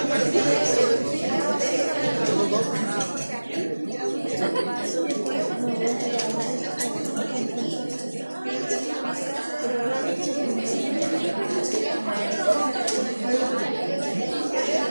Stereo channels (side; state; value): both; inverted; correlation -1.00